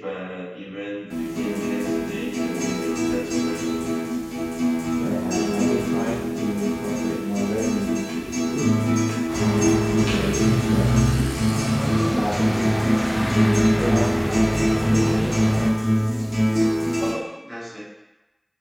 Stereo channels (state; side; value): identical; both; correlation 1.00